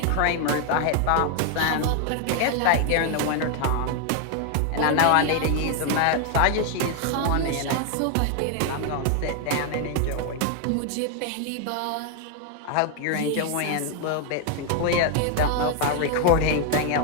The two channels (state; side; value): different; both; correlation 0.00